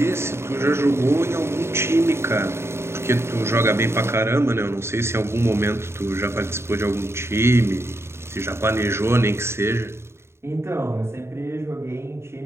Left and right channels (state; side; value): late; left; 0.12 ms